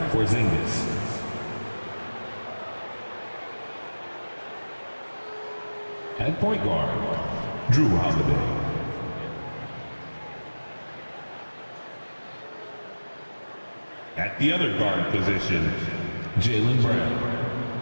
Porzingis. At point guard, Drew Holiday. At the other guard position, Jaylen Brown.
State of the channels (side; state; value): both; inverted; correlation -1.00